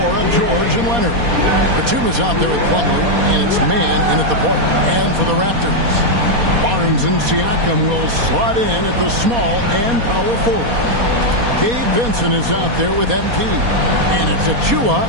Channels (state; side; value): late; left; 4.2 ms